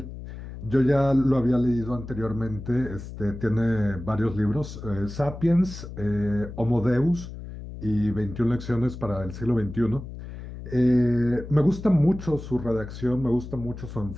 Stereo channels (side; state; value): left; noise; hum, 11 dB below the sound